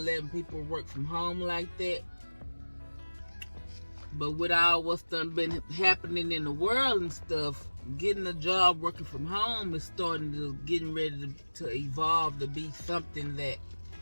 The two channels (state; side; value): inverted; both; correlation -1.00